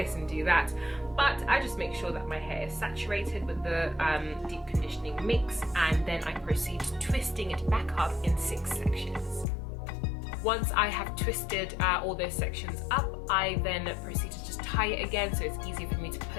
and do that. But I just make sure that my hair is saturated with the deep conditioning mix, and then I proceed to twisting it back up in 6 sections. Once I have twisted all those sections up, I then proceed to just tie it again, so it's easier for me to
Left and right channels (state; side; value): drops out; right; at 9.5 s